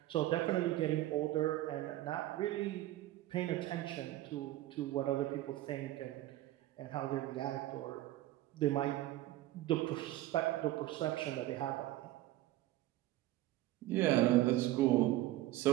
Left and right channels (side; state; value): left; quieter; 15.6 dB